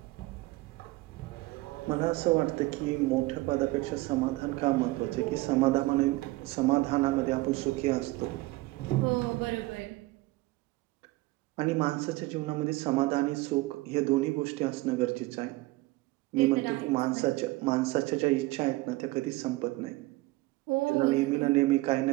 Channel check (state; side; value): quieter; left; 20.5 dB